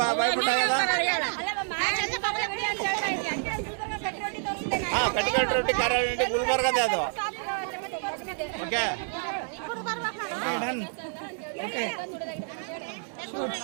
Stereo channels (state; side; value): silent; left; 59 dB below the other